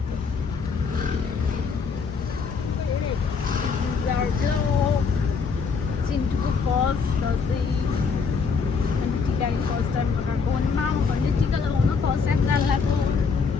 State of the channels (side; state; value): right; quieter; 5.3 dB